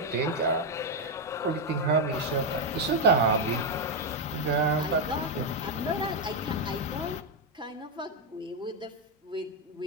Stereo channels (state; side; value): normal; both; correlation 0.03